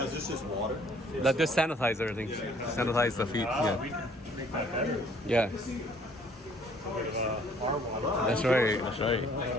Is this just water? Let this sanitize everything. Sanitize the feet. We Yeah. can make that better. Yeah. Our water. That's right. That's right.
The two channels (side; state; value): both; normal; correlation 0.60